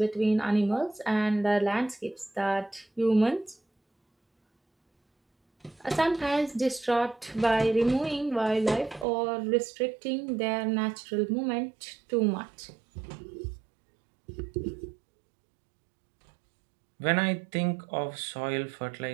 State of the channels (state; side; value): drops out; left; at 9.1 s